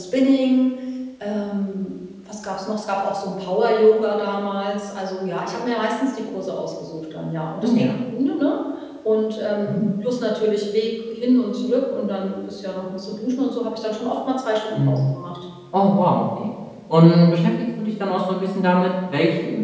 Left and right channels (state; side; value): identical; both; correlation 1.00